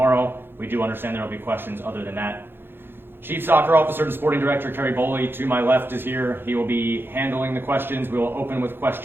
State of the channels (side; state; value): left; late; 0.10 ms